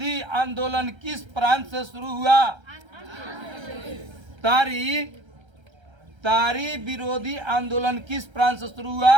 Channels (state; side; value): late; left; 1.3 ms